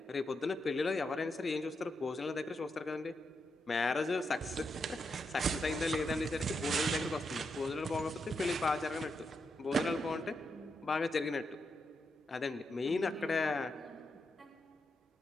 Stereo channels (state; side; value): normal; both; correlation 0.84